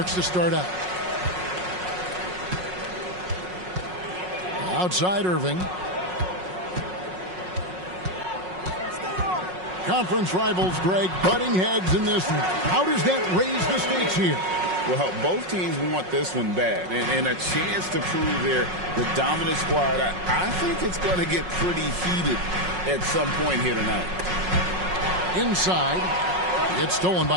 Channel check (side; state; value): left; late; 5.5 ms